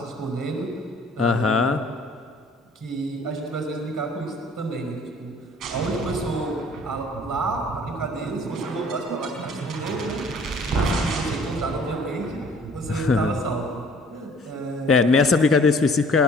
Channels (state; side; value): normal; both; correlation 0.54